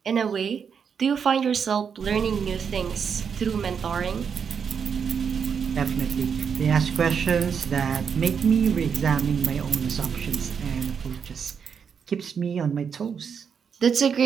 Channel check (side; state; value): left; quieter; 6.8 dB